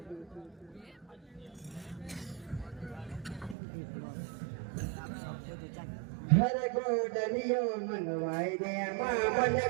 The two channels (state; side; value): drops out; left; at 3.6 s